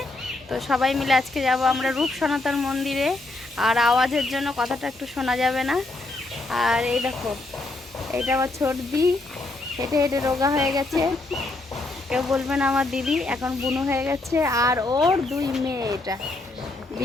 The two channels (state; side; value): quieter; right; 3.0 dB